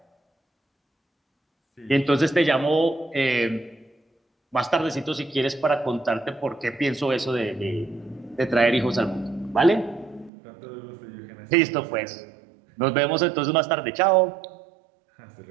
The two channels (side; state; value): left; drops out; at 10.3 s